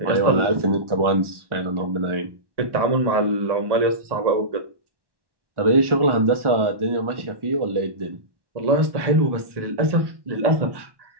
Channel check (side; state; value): left; late; 1.1 ms